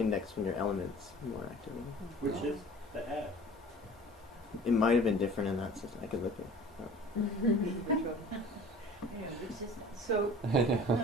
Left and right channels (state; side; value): normal; both; correlation 0.44